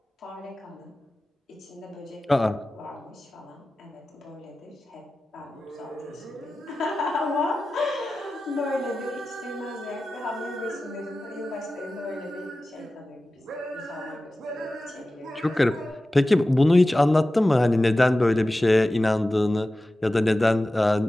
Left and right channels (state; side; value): normal; both; correlation 0.95